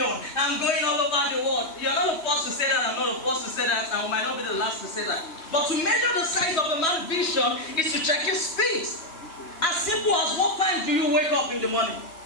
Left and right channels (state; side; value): late; right; 3.1 ms